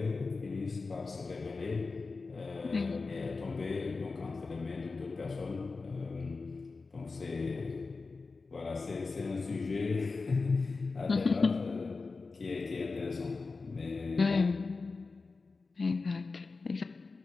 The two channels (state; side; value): quieter; right; 4.1 dB